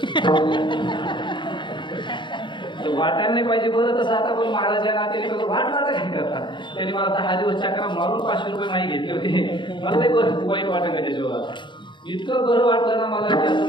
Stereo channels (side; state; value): right; late; 0.23 ms